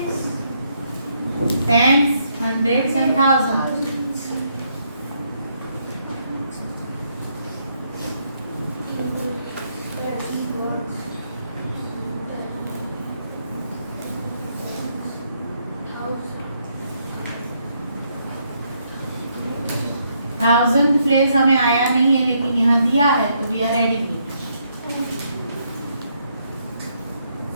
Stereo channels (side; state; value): both; inverted; correlation -0.75